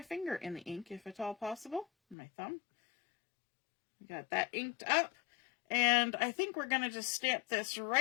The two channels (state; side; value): drops out; right; at 2.1 s